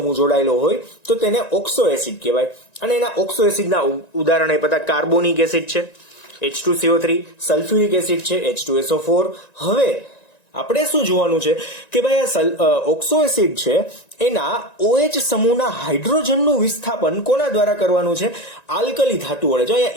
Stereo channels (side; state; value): right; late; 1.9 ms